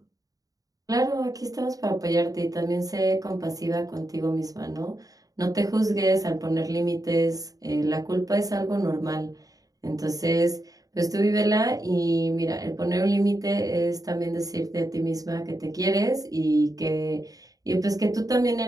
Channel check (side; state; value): left; late; 0.18 ms